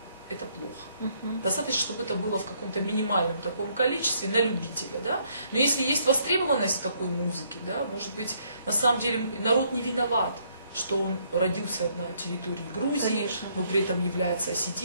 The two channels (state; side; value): inverted; both; correlation -0.69